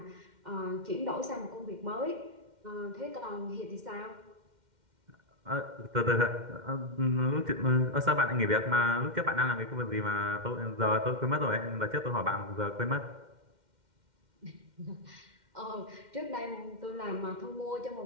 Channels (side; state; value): left; late; 2.1 ms